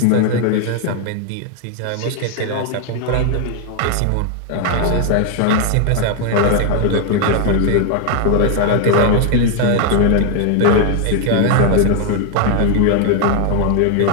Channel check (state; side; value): different; both; correlation 0.01